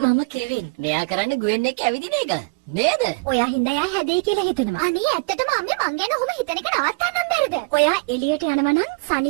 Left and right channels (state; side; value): quieter; left; 30.4 dB